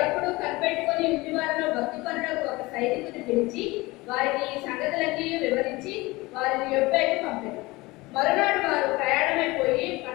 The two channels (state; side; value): quieter; right; 21.8 dB